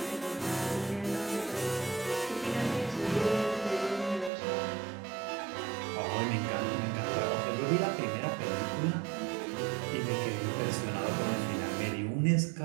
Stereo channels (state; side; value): drops out; left; at 4.3 s